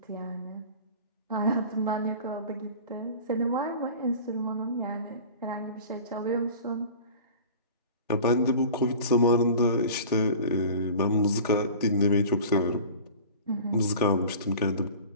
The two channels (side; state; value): both; inverted; correlation -0.39